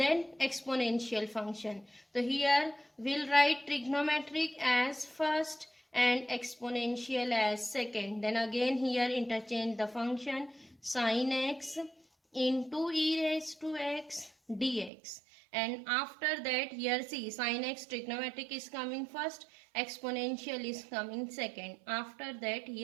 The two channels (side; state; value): left; drops out; at 14.9 s